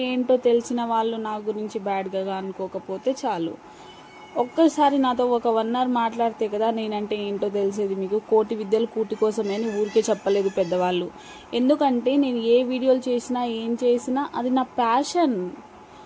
ఏంటో తెలిసిన వాళ్ళు నా గురించి బ్యాడ్గా అనుకోకపోతే చాలు. ఒక్కసారి నాతో ఒక 1 hour మాట్లాడితే కదా నేనంటే ఏంటో తెలిసేది మీకు. కోటి విద్యలు కూటి కోసమే అని ఊరికే చెప్పలేదు పెద్దవాళ్ళు. ఎందుకంటే నేను ఏ వీడియోలు చేసినా ఏం చేసినా అది నా ప్యాషన్.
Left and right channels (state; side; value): identical; both; correlation 1.00